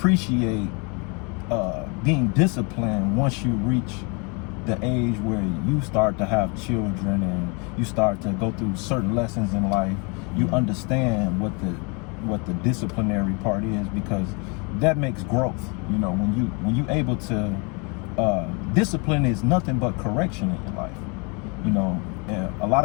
being disciplined once you reach the age where you start to have children and you start to go through certain lessons in life. You understand what the disciplinary part is, because that makes growth. You know, when you able to discipline is nothing but correction in your life. You know, and a lot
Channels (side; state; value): right; quieter; 32.4 dB